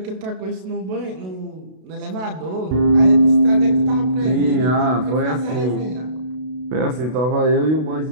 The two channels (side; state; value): left; late; 32 ms